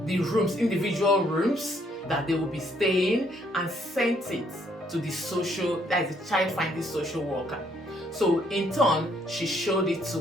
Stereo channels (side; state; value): both; normal; correlation 0.69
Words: the rooms, individual rooms that they will be staying, and sent it to the child finding social worker. So in turn, she showed it